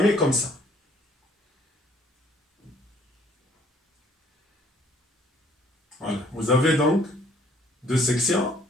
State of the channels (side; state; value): both; normal; correlation 0.60